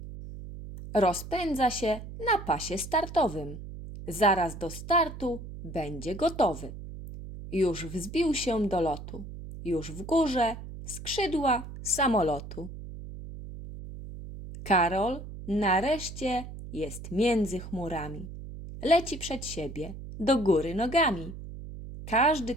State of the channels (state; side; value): noise; right; hum, 11 dB below the sound